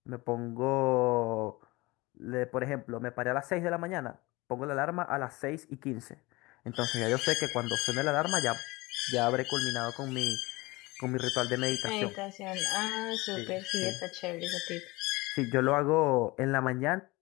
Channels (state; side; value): quieter; right; 22.3 dB